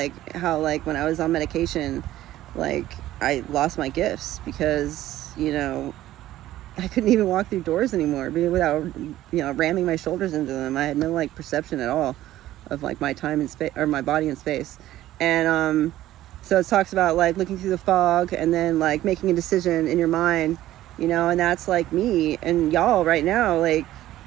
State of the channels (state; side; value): quieter; left; 14.3 dB